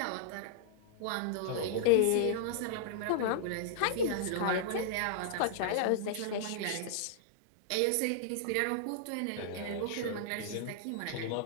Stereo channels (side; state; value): both; different; correlation -0.01